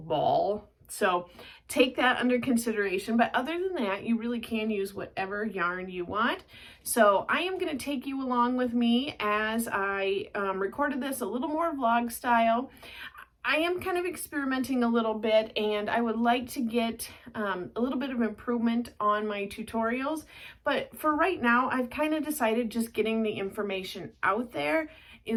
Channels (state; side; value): identical; both; correlation 1.00